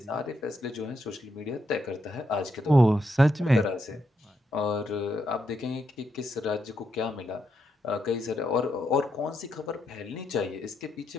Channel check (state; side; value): normal; both; correlation 0.80